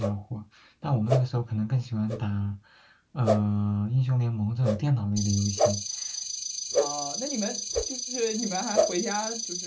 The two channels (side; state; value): both; identical; correlation 1.00